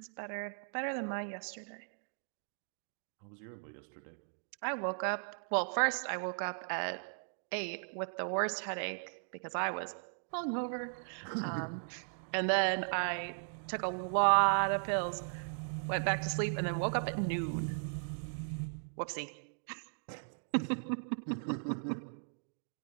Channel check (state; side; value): silent; left; digital silence